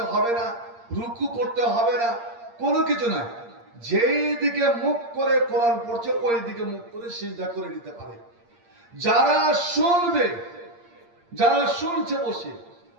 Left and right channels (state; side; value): late; left; 8.6 ms